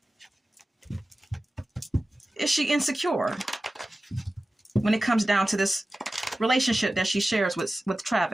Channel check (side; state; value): both; normal; correlation 0.95